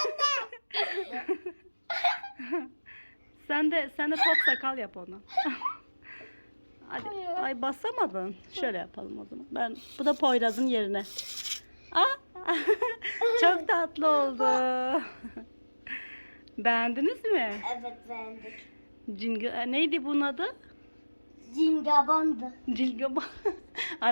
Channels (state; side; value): inverted; both; correlation -1.00